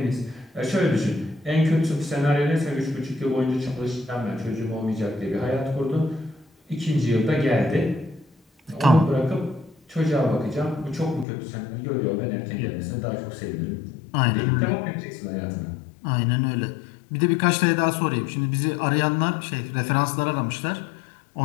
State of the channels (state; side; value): drops out; right; at 11.2 s